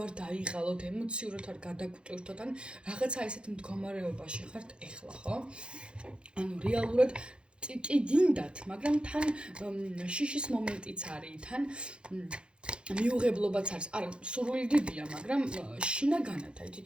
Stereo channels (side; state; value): left; late; 0.055 ms